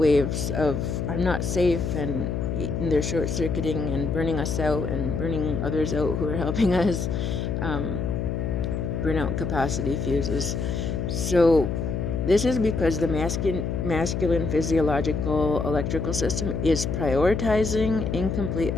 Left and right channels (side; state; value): left; noise; hum, 2 dB below the sound